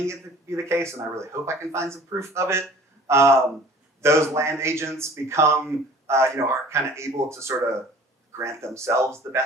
it to be the case, and I really hope I can find some proof of it. Those land agents become, are kind of able to sort of grant themselves the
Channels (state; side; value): normal; both; correlation 0.48